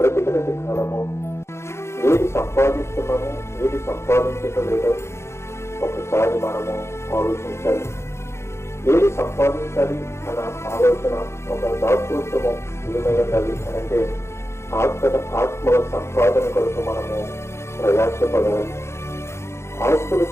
కాలము ఏది సంపాదిస్తున్నామో, ఏది సంపాదించటం లేదో ఒకసారి మనము ఆలోచించాలి. ఏది సంపాదించాలి అన్న ఆలోచన, ఒక దాతృత్వము ఏమై ఉండాలి అని అంటే ఆత్మల సంపాదన కొరకు మనము ప్రయాసపడాలి. ఆస్తుల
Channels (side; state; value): right; late; 0.13 ms